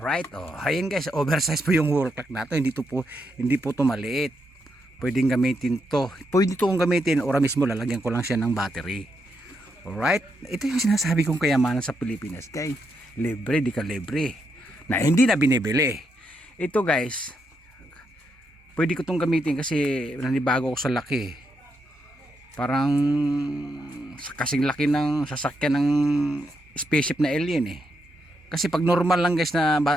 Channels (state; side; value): normal; both; correlation 0.81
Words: ayun guys, oversize po yung wall clock nato. Hindi po to maliit. Pwedeng gamitin to. Pwede to kong gamitin, ora mismo lalagyan ko lang siya ng battery. Alright, ito yung sinasabi kong kayamanan sa Pilipinas guys. Libre, di ka libre. Na hindi na binibili. Ito guys, pwede ko itong gamitin kasi nanibago ko sa laki. Parang kasing laki ng sasakyan ng spaceship na alien Kasi pag normal lang guys na